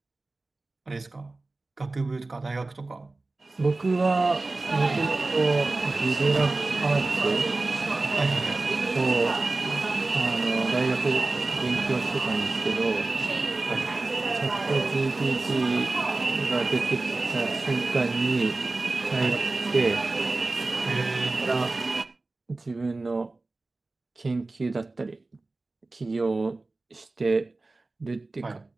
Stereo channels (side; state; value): left; quieter; 3.2 dB